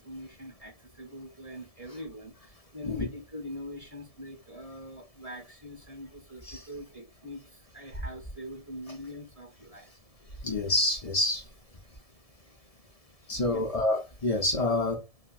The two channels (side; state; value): right; late; 1.7 ms